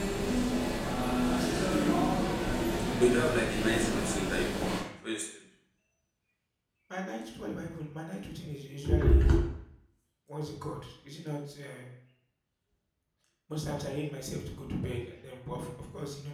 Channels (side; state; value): both; identical; correlation 1.00